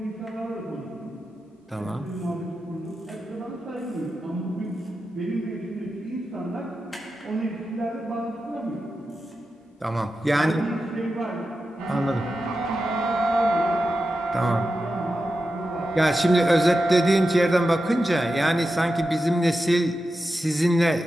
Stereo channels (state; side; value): normal; both; correlation 0.90